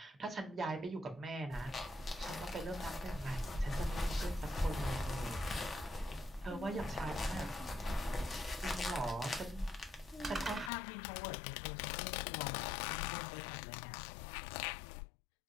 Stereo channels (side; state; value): right; drops out; at 10.7 s